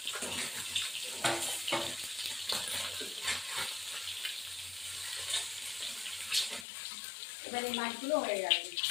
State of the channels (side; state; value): right; drops out; at 6.7 s